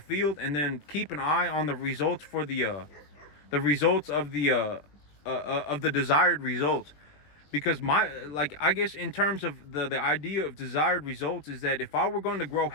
field, and then keep an eye on the results for the results of the desired results. Because I guess in terms of the idea of desired results is that if I were going to grow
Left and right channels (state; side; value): late; right; 20 ms